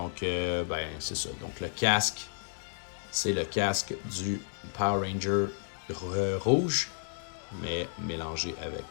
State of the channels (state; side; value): silent; right; digital silence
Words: ben c'est ça. Donc le casque, c'est le casque du Power Ranger rouge, mais mélangé avec